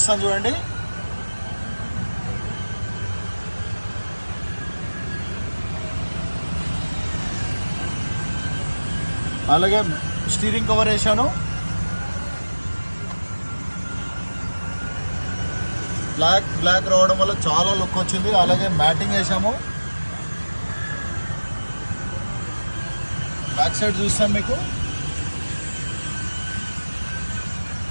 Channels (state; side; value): inverted; both; correlation -1.00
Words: చూడండి. అలాగే స్టీరింగ్ కవర్ వేసాను. బ్లాక్ రావడం వల్ల చాలా లుక్ వచ్చింది. అలాగే మ్యాటింగ్ వేసాము. బ్యాక్ సైడ్ చూస్తాను మీకు.